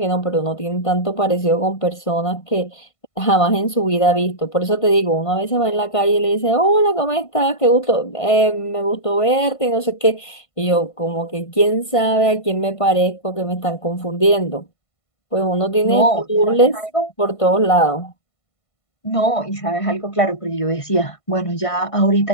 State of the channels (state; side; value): late; right; 1.5 ms